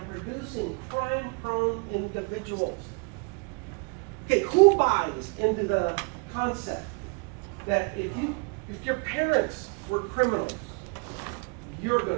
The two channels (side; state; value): left; quieter; 33.6 dB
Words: producing crime-prone individuals. Okay, who buys into the concept that if your parents were criminals, you're